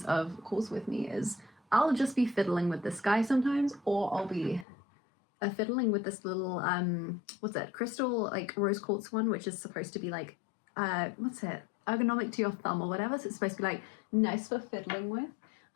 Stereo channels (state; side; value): drops out; right; at 4.7 s